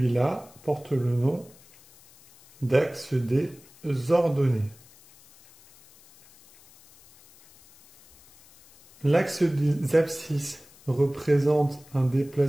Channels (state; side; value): noise; left; hiss, 26 dB below the sound